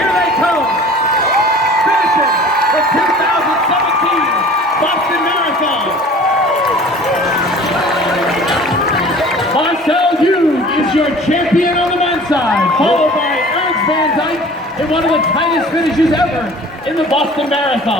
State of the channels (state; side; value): normal; both; correlation 0.45